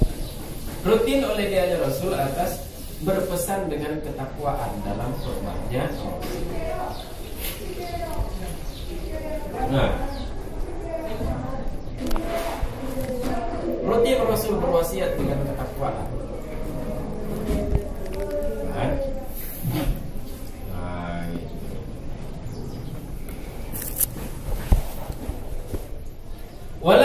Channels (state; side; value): identical; both; correlation 1.00